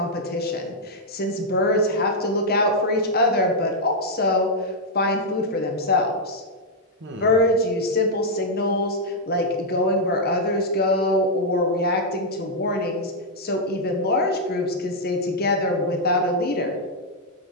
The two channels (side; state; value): both; normal; correlation -0.04